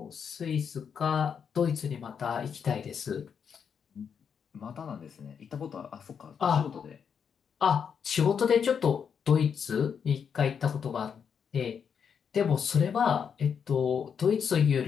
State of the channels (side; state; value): right; quieter; 7.1 dB